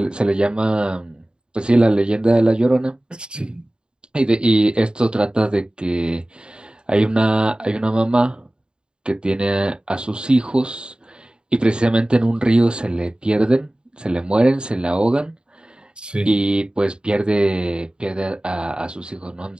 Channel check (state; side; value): late; left; 0.050 ms